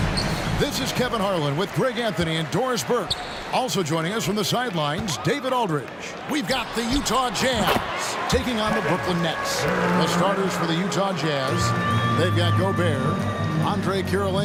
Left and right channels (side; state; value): both; identical; correlation 1.00